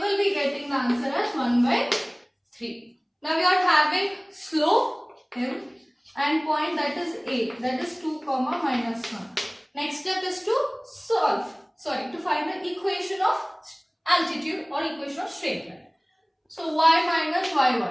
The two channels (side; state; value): both; identical; correlation 1.00